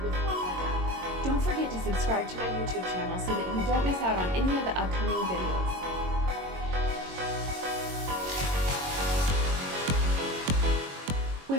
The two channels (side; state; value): left; late; 22 ms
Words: with one another. Don't forget to subscribe to my YouTube channel so that you don't miss out on any of the upcoming videos.